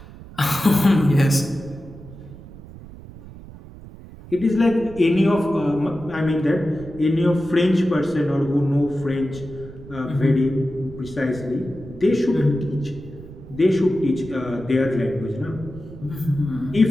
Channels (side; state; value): right; noise; rumble, 17 dB below the sound